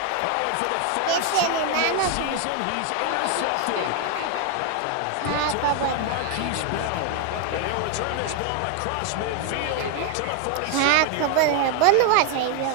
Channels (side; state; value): both; different; correlation 0.01